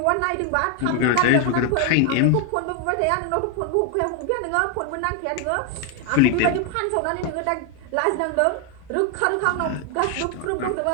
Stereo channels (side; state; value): both; different; correlation 0.01